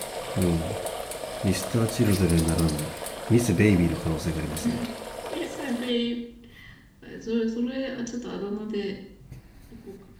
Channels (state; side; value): identical; both; correlation 1.00